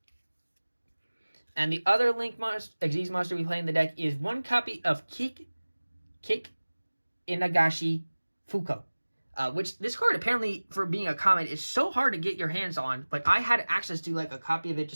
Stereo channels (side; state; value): both; inverted; correlation -1.00